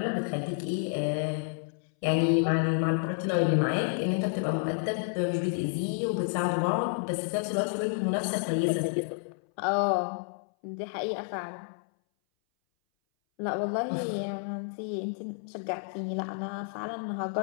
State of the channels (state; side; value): silent; right; 58 dB below the other